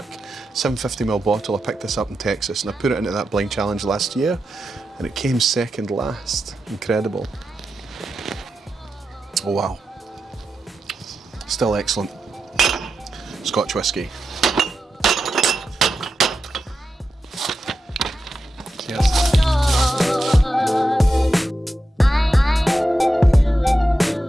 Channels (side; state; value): both; normal; correlation 0.89